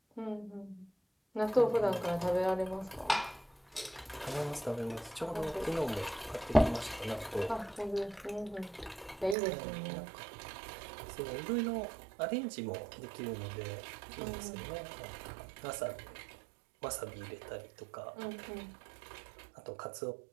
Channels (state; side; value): drops out; left; at 9.3 s